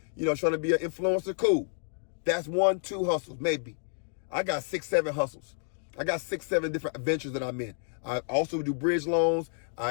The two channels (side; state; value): right; silent; digital silence